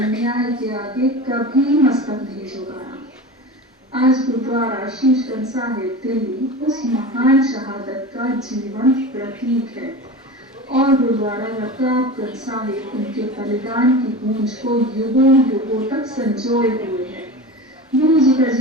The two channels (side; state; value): both; normal; correlation 0.30